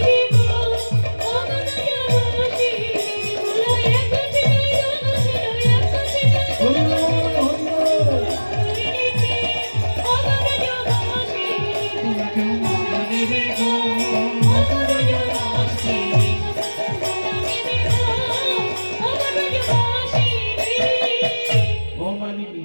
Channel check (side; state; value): both; inverted; correlation -1.00